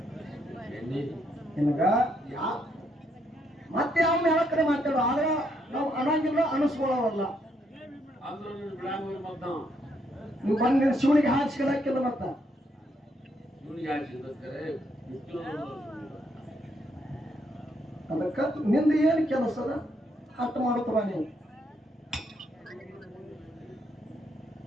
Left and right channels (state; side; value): normal; both; correlation 0.74